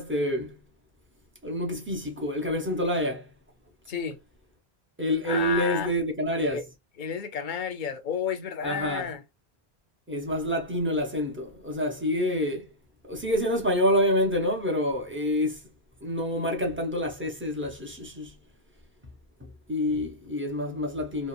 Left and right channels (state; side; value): normal; both; correlation -0.14